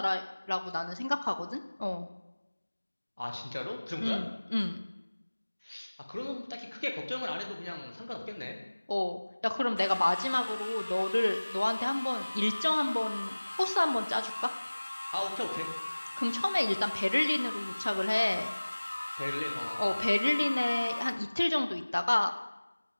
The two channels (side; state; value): both; inverted; correlation -1.00